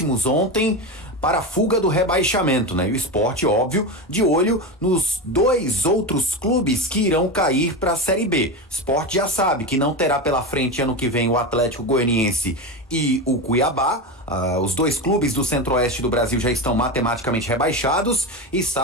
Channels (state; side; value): normal; both; correlation 0.19